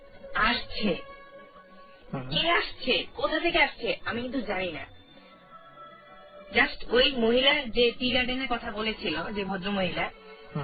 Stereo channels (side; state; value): both; identical; correlation 1.00